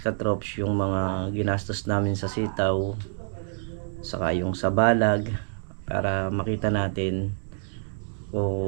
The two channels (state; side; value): silent; left; digital silence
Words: yung mga ginastos namin sa sitaw, saka yung sa balag, para makita natin